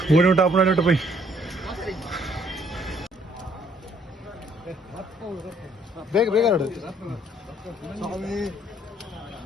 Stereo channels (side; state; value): both; normal; correlation 0.64